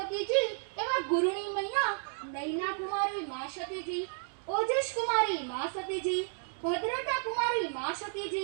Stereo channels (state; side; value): silent; left; 56 dB below the other